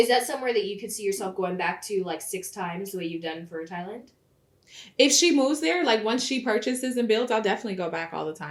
that somewhere that you could see yourself going back to, like, 6 times the way you've done for Thailand? If she moves there, like, once she purchases and builds, I'll definitely go back all the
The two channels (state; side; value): identical; both; correlation 1.00